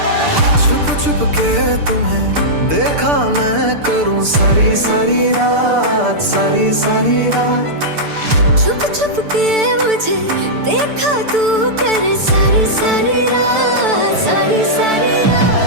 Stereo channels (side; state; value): left; late; 6.8 ms